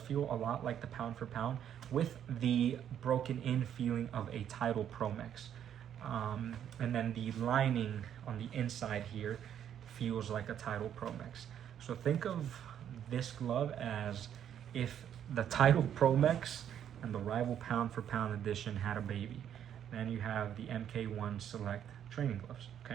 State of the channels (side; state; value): left; quieter; 9.6 dB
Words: a lot like the pound for pound with the broken in feeling of a Tidal Pro Mix. And then the lining on the inside here feels like a Tidal Pro Mix. So think of this glove as if the Tidal Pro Mix and the rival pound for pound edition had a baby. Then you have the MK1 Select training gloves,